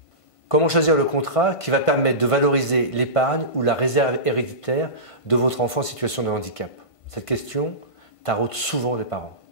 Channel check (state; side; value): late; right; 1.5 ms